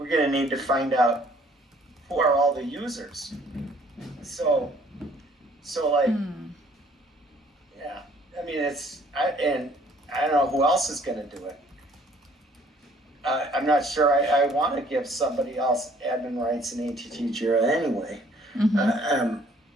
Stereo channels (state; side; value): normal; both; correlation 0.59